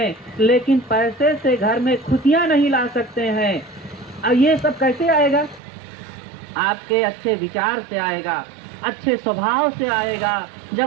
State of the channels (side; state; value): left; drops out; at 5.6 s